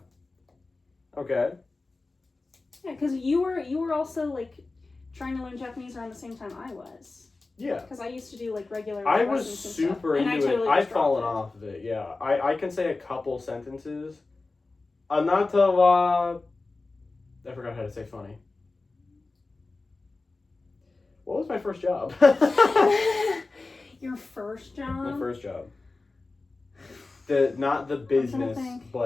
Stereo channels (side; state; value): right; quieter; 3.5 dB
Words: Okay. Yeah, because you were also like trying to learn Japanese around the same time I was. Yeah. Because I used to do like regular. I was lessons and super stuff, and into totally it. I've just dropped fallen it. off of it, yeah. I can say a couple sentences. Anata wa... I forgot how to say funny. What was my first job? Your first job? My first job. Not the business,